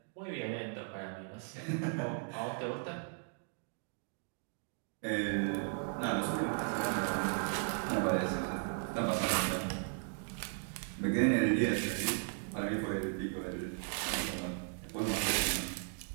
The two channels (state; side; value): silent; left; 53 dB below the other